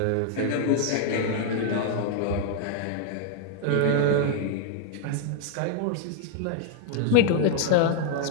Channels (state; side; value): different; both; correlation 0.00